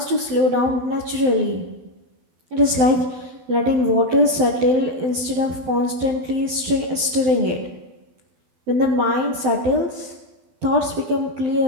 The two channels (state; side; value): late; left; 12 ms